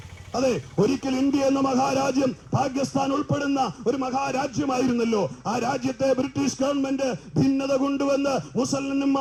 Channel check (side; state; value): both; identical; correlation 1.00